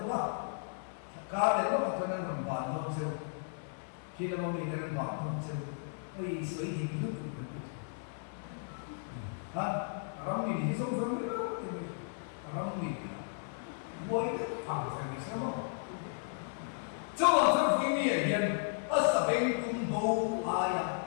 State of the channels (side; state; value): right; silent; 55 dB below the other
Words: ba cá đấy nó mặc cái này còn bản không chứ khi là mình cái này bản không chứ ơi sấy thì cứ được ha ram mình thì sống sống đấy thì ram mình quay được thẳng phải bị sao không cho bạn cho phụ nữ hiện asabeng tumbo aya